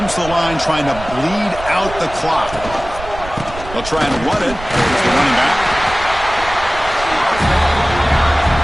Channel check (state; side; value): noise; right; rumble, 13 dB below the sound